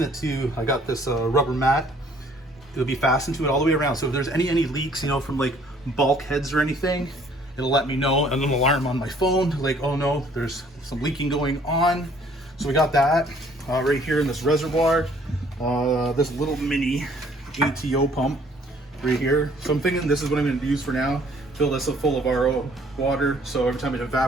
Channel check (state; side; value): normal; both; correlation 0.59